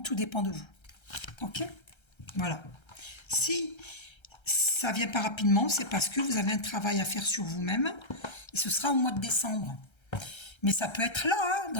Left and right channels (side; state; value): right; late; 1.3 ms